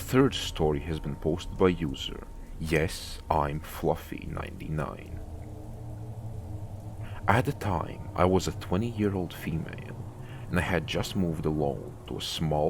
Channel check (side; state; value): both; identical; correlation 1.00